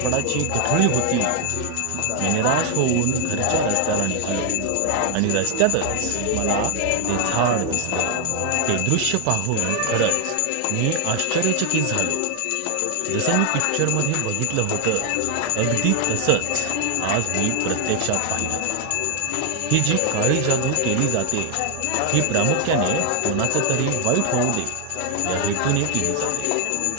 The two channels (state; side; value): different; both; correlation 0.00